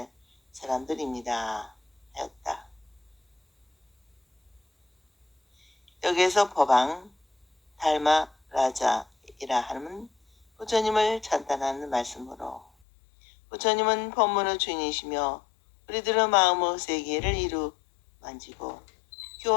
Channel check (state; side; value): drops out; right; at 12.7 s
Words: 사람들입니다 하였다. 여기에서 법왕 달마 라자이라 하는 부처님을 찬탄하는 말씀으로 부처님은 법문의 주인이시며 우리들의 마음의 세계를 이루 만지고